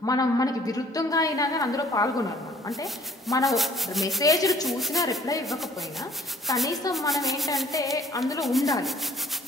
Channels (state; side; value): normal; both; correlation 0.57